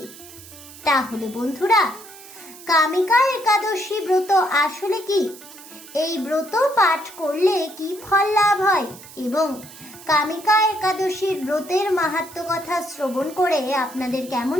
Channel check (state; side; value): noise; right; hiss, 18 dB below the sound